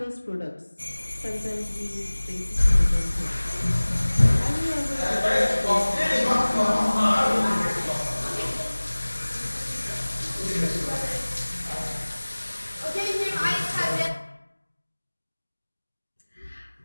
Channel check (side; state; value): both; inverted; correlation -1.00